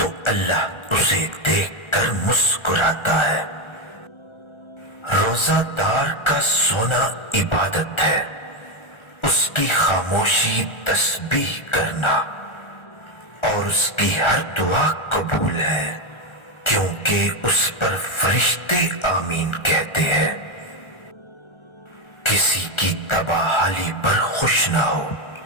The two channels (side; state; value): right; late; 1.4 ms